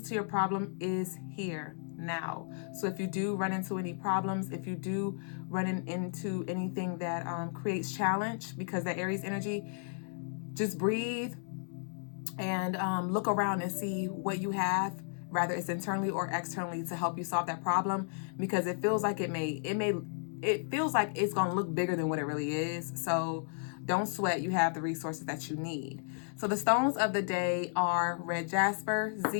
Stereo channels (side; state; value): right; silent; 55 dB below the other